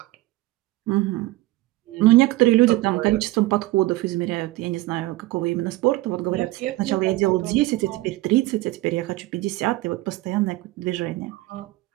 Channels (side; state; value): left; quieter; 18.6 dB